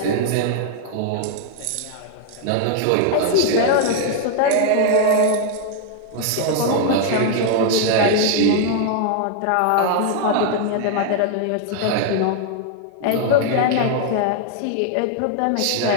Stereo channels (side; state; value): both; different; correlation 0.00